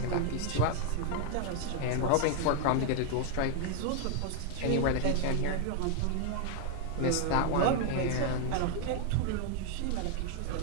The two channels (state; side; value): different; both; correlation 0.00